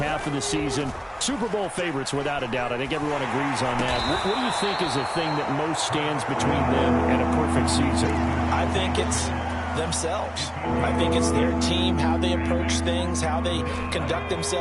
of the season. Super Bowl favorites, without a doubt. I think everyone agrees on that. What do you think is the thing that most stands between them and a perfect season? I think it's themselves. I think it's their team, how they approach things, how they conduct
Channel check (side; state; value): both; identical; correlation 1.00